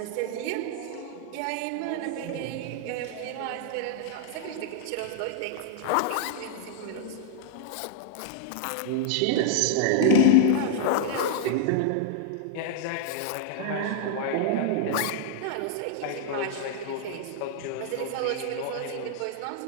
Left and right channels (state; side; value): different; both; correlation 0.00